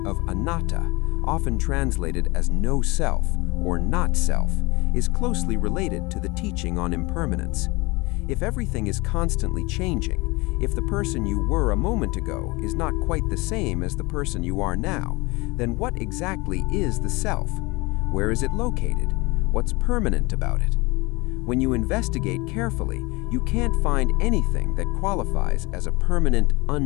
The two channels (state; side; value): quieter; right; 24.5 dB